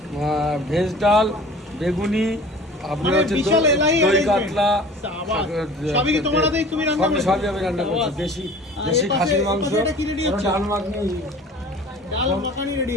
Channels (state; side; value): normal; both; correlation 0.44